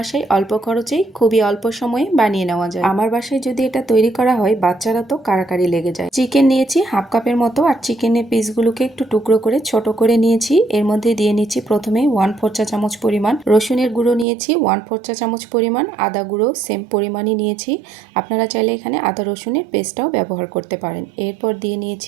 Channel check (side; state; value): left; drops out; at 14.2 s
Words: অল্প খরচেই খুবই অল্প সময়ে বানিয়ে নেওয়া যায়। আমার বাসায় যদি এটা তৈরি করা হয় বাচ্চারা তো কাড়াকাড়ি লেগে যায়। চিকেন নিয়েছি হাফ কাপের মতো, আর চিকেনের পিসগুলোকে একটু টুকরো করে ছোট করে নিয়েছি। এর মধ্যে দিয়ে নিচ্ছি প্রথমে 1/4 চা চামচ পরিমাণ রসুনের গুঁড়ো নিয়েছি, 1/4 চা চামচ পরিমাণ আদা গুঁড়ো সেম পরিমাণই নিয়েছি। আপনারা চাইলে এখানে আদা রসুনের পেস্টটাও ব্যবহার করতে পারেন। এরপর দিয়ে